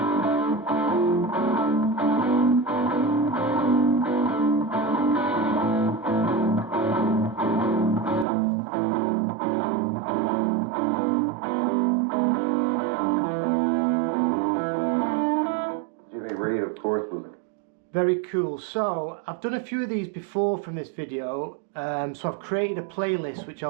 Reed, of course, was very cool. So I've done a few of these before from this video, so I've created a playlist which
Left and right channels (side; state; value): left; drops out; at 8.2 s